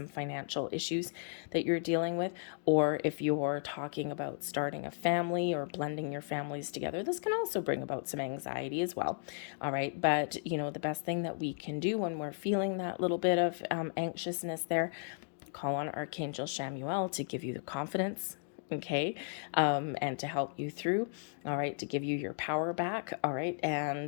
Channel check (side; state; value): right; silent; digital silence